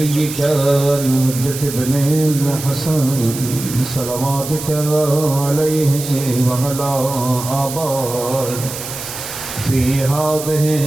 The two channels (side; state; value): right; noise; hiss, 9 dB below the sound